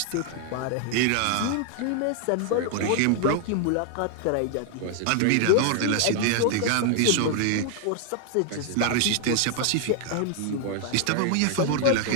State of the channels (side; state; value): both; different; correlation 0.00